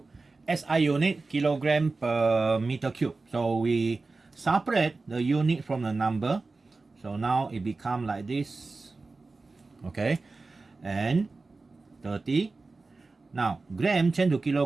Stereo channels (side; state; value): left; quieter; 3.7 dB